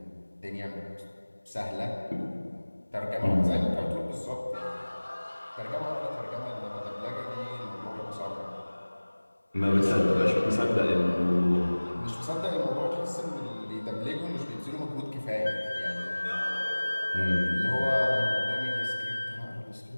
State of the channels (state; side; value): inverted; both; correlation -1.00